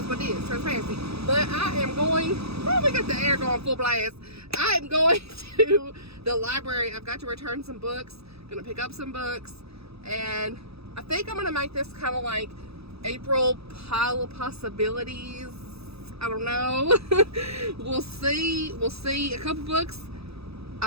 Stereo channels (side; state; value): left; late; 0.78 ms